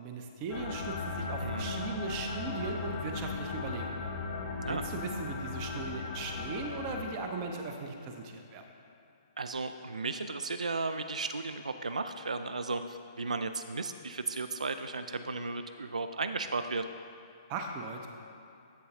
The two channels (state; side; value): inverted; both; correlation -0.52